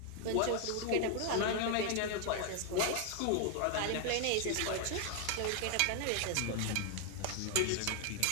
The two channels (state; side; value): different; both; correlation 0.00